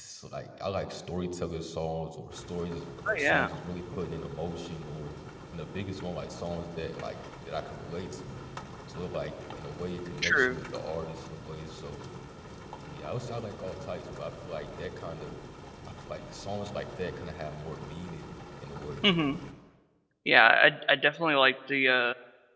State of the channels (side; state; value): both; identical; correlation 1.00